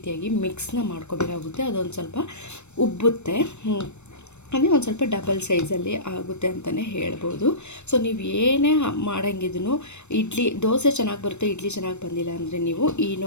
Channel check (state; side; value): late; right; 0.82 ms